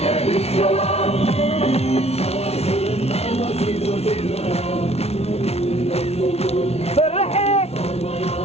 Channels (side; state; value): right; late; 0.30 ms